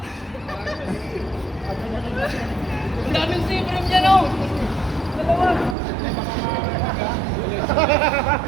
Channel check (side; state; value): left; drops out; at 5.8 s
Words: Ang daming siprim niya, no? Dalawa.